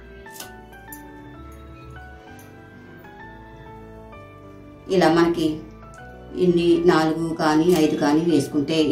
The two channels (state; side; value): identical; both; correlation 1.00